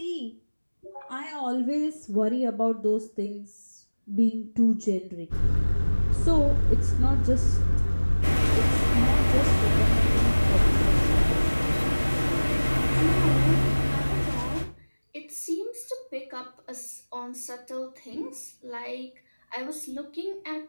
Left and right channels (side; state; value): both; inverted; correlation -1.00